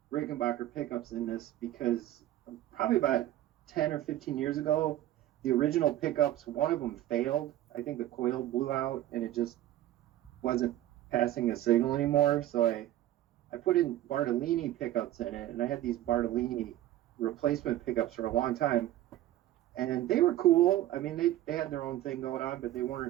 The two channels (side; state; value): left; quieter; 13.8 dB